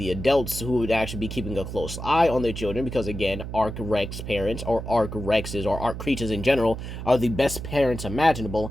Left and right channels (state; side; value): noise; right; hum, 8 dB below the sound